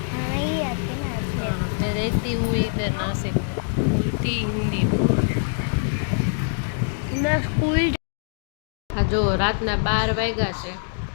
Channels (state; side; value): silent; right; digital silence